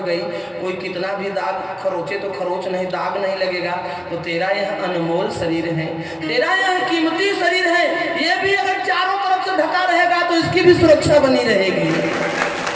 कोई कितना भी दाग खरोचे तो खरोच नहीं, दाग नहीं लगेगा। तो तेरा यह अनमोल शरीर है, तेरा यह कीमती शरीर है, ये भी अगर चारों तरफ से ढका रहेगा तो इसकी भी सुरक्षा बनी रहेगी।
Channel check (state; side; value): identical; both; correlation 1.00